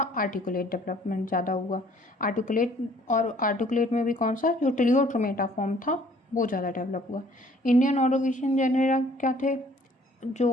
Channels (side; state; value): both; normal; correlation 0.58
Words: आर्टिकुलेट डेवलपमेंट ज़्यादा हुआ। आर्टिकुलेट, और आर्टिकुलेट में भी कौन सा, जो टिलियोट्रोमेटा फॉर्म था वो ज़्यादा डेवलप हुआ। इंडियन ऑर्डोविशियन जेनेरा क्या थे,